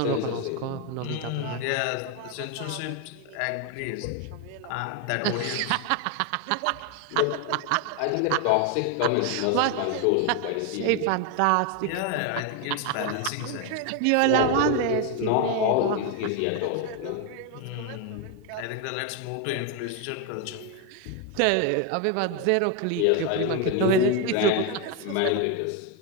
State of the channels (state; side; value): different; both; correlation 0.01